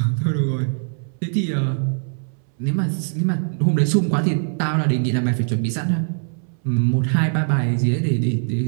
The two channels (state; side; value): silent; left; 65 dB below the other